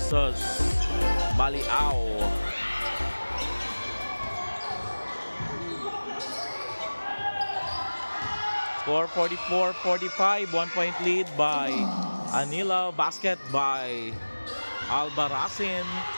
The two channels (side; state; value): both; inverted; correlation -1.00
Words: Maliao. Score 44-45, 1-point lead by Anilao. Basket by Albarracin.